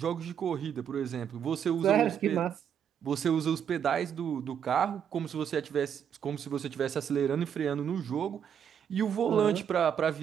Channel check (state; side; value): quieter; left; 8.4 dB